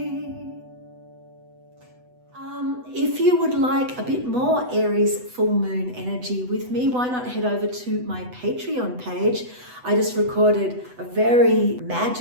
If you would like a bit more Aries full moon energy with me, why not head over to my Patreon page. I just recorded a very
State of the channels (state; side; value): late; left; 8.0 ms